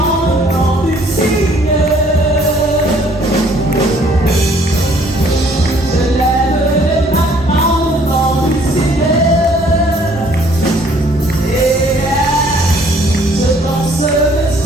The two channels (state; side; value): normal; both; correlation 0.60